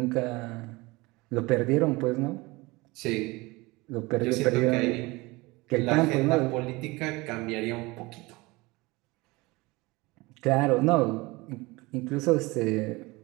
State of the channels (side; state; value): left; quieter; 23.1 dB